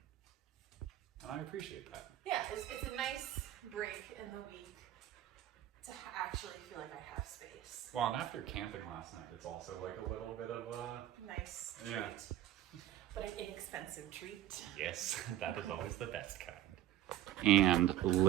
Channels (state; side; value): quieter; left; 13.0 dB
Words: And I appreciate that. Yeah, it's a nice break in the week to actually feel like I have space. Well, and after camping last night, it's also like a little bit of a... Nice treat. Yeah. But an inexpensive treat. Yes, that is always the best kind. And